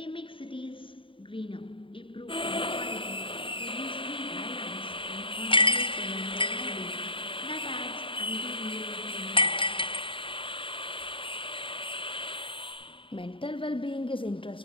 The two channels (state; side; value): late; right; 0.25 ms